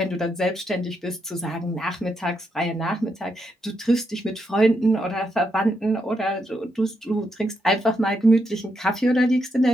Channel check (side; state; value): both; normal; correlation 0.81